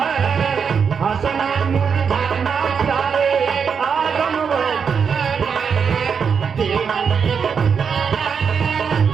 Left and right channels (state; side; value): quieter; left; 6.4 dB